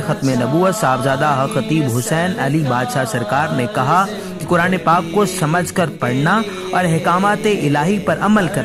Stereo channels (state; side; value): identical; both; correlation 1.00